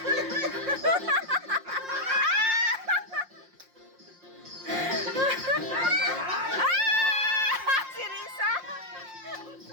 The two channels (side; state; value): left; late; 5.6 ms